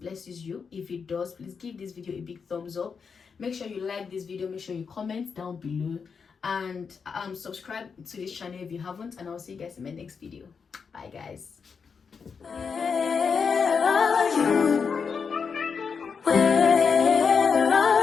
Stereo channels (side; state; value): right; quieter; 5.8 dB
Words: you. If it does, please give this video a big thumbs up. Make sure you like this video. Make sure you comment down below, and subscribe to this channel if you haven't, and I'll see you guys in my next video. Bye guys. Where are you? Where